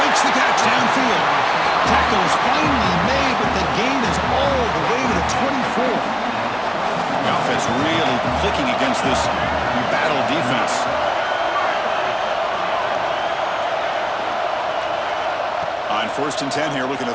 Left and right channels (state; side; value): identical; both; correlation 1.00